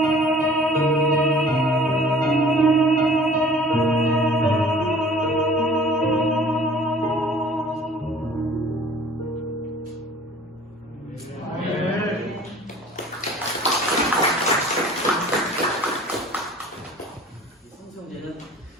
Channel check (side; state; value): both; normal; correlation 0.49